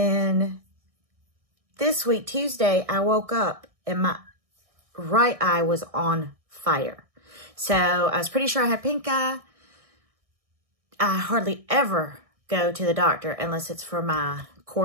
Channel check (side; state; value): left; late; 1.6 ms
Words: this week, Tuesday, I woke up and my right eye was on fire. So I was pretty sure I had pink eye. I hardly ever go to the doctor unless it's for my